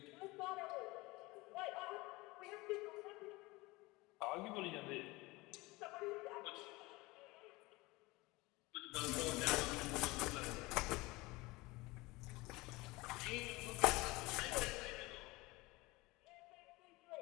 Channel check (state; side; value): quieter; right; 22.2 dB